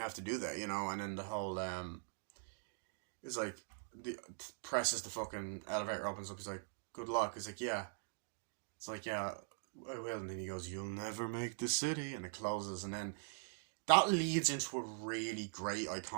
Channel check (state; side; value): silent; left; digital silence